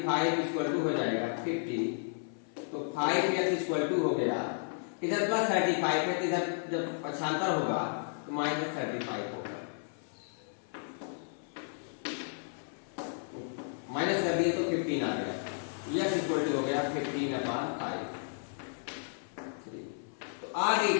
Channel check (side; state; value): right; silent; 56 dB below the other